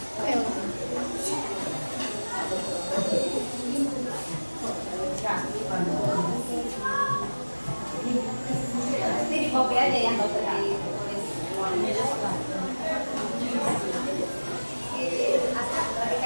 Ini di copy aja ya, nggak usah ditulis semuanya. Asal lagi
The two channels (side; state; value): both; inverted; correlation -1.00